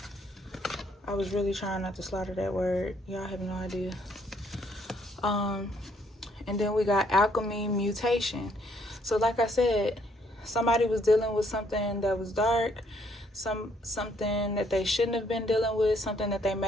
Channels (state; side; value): normal; both; correlation 0.68